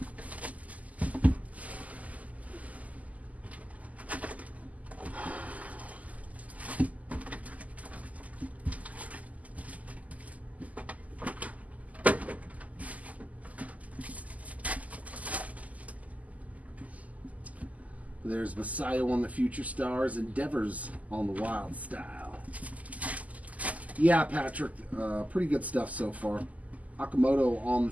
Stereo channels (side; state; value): left; late; 0.075 ms